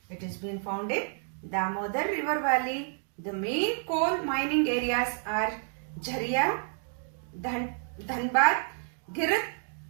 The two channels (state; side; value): silent; left; 58 dB below the other